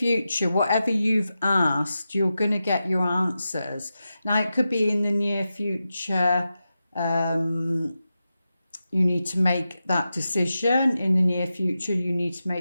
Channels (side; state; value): both; inverted; correlation -0.91